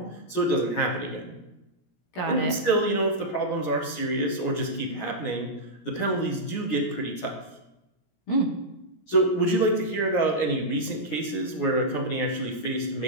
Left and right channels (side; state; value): right; late; 17 ms